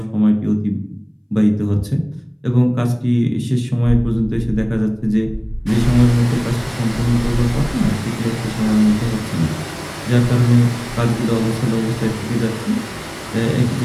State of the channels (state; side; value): identical; both; correlation 1.00